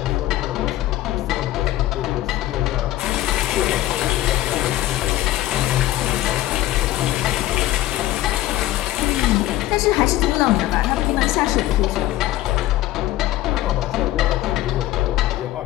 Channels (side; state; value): right; quieter; 15.2 dB